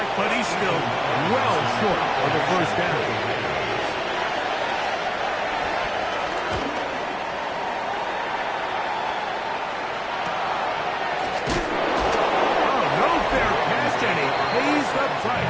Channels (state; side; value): identical; both; correlation 1.00